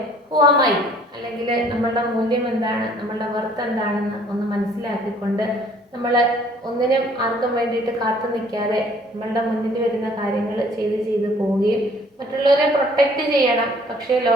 ഹുവാമായി അല്ലെങ്കിൽ നമ്മളുടെ മൂല്യം എന്താണ്, നമ്മളുടെ വർത്ത് എന്താണെന്ന് ഒന്ന് മനസ്സിലാക്കിക്കൊണ്ട് നമ്മൾ ഒന്നിനും ആർക്കും വേണ്ടിയിട്ട് കാത്തു നിൽക്കാതെ നമ്മളുടെ മുന്നിൽ വരുന്ന കാര്യങ്ങൾ ചെയ്ത് പോവുകയും മറ്റുള്ളവരെ പ്രൊട്ടക്റ്റ് ചെയ്യണം. പക്ഷേ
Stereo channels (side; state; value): both; normal; correlation 0.57